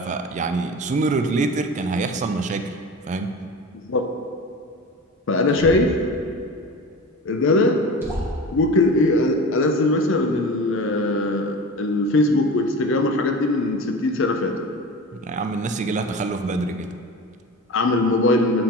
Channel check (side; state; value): both; normal; correlation 0.32